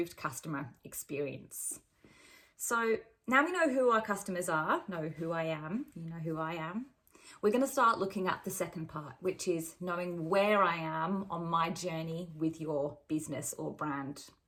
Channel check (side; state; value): both; identical; correlation 1.00